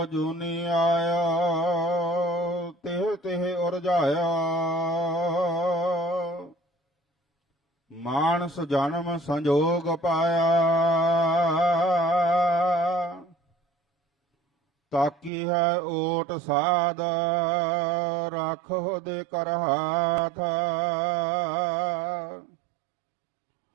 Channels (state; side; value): drops out; left; at 15.3 s